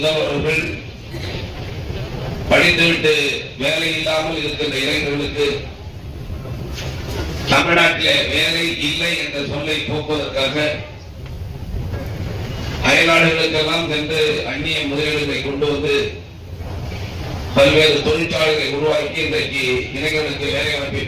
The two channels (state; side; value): identical; both; correlation 1.00